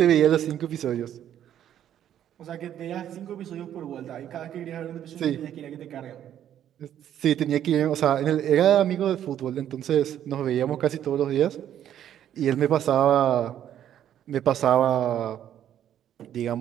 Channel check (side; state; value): left; quieter; 10.6 dB